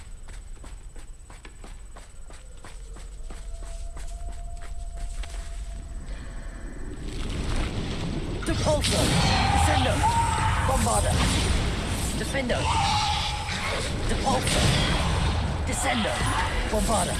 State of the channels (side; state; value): both; identical; correlation 1.00